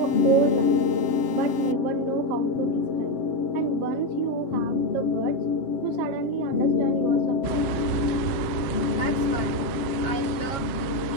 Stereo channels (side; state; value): right; late; 7.3 ms